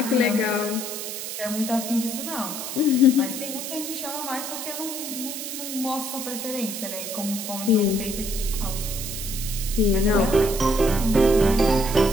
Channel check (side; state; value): right; noise; hiss, 6 dB below the sound